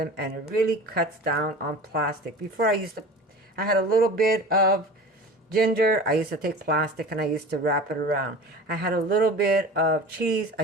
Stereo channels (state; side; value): normal; both; correlation 0.37